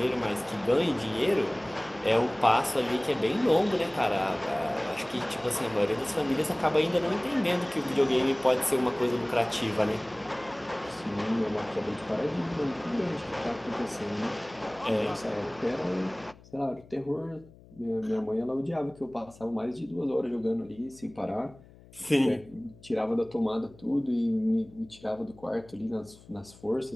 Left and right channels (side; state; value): left; noise; hum, 23 dB below the sound